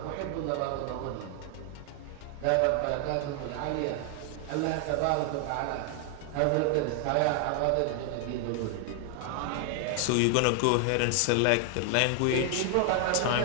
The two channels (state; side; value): different; both; correlation 0.00